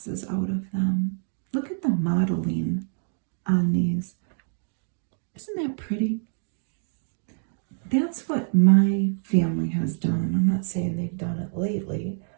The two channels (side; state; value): left; silent; digital silence